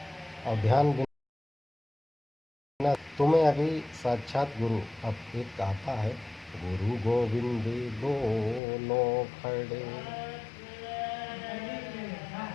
और ध्यान बिना तुम्हें अभी साक्षात गुरु, अब एक आता है, गुरु गोविंद दोनों खड़े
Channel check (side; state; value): right; drops out; at 8.6 s